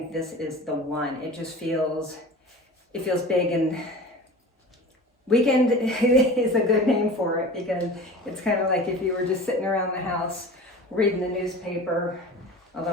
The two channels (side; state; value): both; normal; correlation 0.36